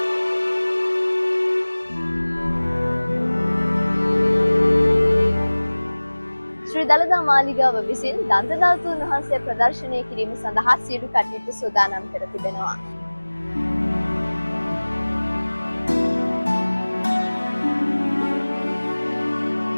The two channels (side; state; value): both; inverted; correlation -1.00